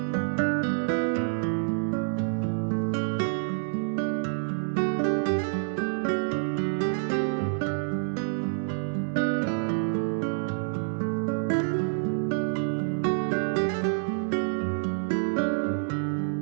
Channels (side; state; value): left; silent; 60 dB below the other